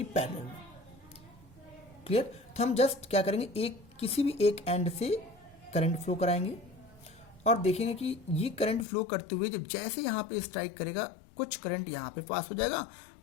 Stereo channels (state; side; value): drops out; right; at 8.8 s